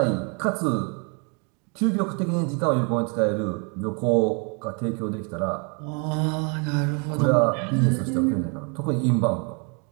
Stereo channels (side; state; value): left; quieter; 35.7 dB